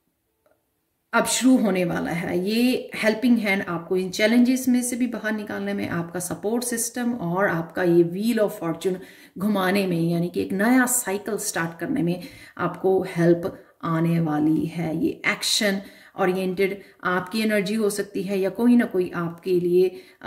अब शुरू होने वाला है। ये हेल्पिंग हैंड आपको इन चैलेंजेस में से भी बाहर निकालने में, आपका सपोर्ट सिस्टम और आपका ये व्हील ऑफ फॉर्च्यून घुमाने में, यानी कि एक नया साइकिल स्टार्ट करने में आपको हेल्प आने वाली है। ये एक्शन ओरिएंटेड आपकी एनर्जी हो सकती है, या कोई ना कोई आपके लिए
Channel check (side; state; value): both; identical; correlation 1.00